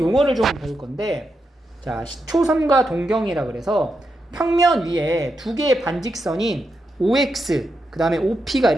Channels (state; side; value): normal; both; correlation 0.85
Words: 좀 배울 건데, 자, 시초선과 동경이라 그래서 평면 위에 두 개의 반직선인 OX, 그 다음에 OP가